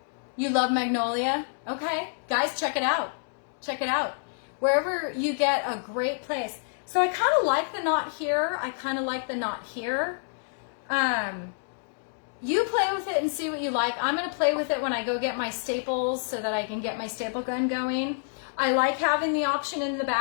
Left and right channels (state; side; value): silent; right; digital silence